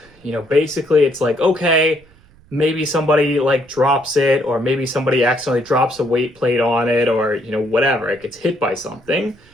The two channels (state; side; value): noise; right; rumble, 28 dB below the sound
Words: basically it's like, okay, maybe somebody like drops it, or maybe somebody accidentally drops a weight plate on it, or, whatever, it gets hit by something.